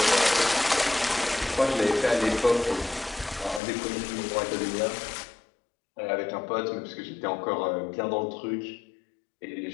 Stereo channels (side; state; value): right; drops out; at 3.6 s